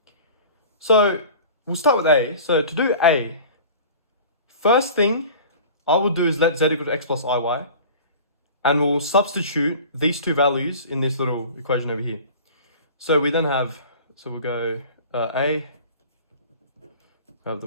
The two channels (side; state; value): both; inverted; correlation -0.41